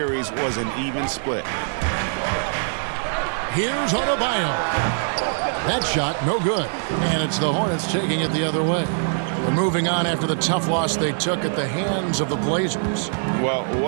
was an even split. Here's Adebayo. That shot, no good. And it's the Hornets taking it the other way. They're moving on after the tough loss they took at the hands of the Blazers. Well,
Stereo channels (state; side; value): silent; left; digital silence